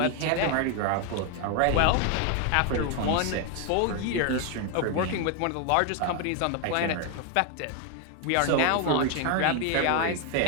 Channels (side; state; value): both; different; correlation 0.01